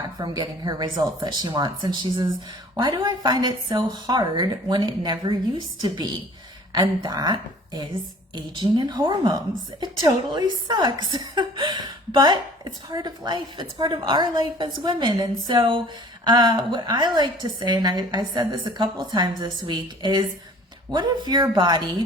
from getting her results that she wants. And she says, why do I find it so hard when it never used to be? And that is aging and hormones. It totally sucks, but it's part of life. It's part of our life as women. And so what I like to say, and I said this a couple of times this week, is what if your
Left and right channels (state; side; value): normal; both; correlation 0.49